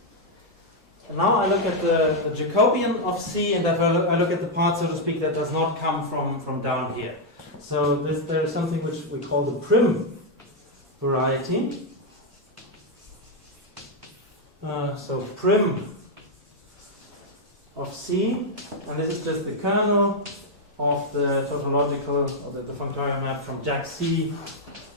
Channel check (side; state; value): both; normal; correlation -0.01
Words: now I look at the Jacobian of C, and I look at the part, so to speak, that does not come from down here. So there is something which we call the Prim Variety. So Prim of C, and this is just the kernel of the tautological, or the functorial map from Jack C